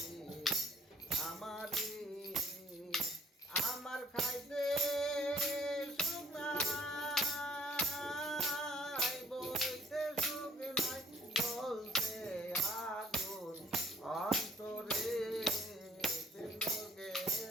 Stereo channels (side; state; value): both; normal; correlation 0.58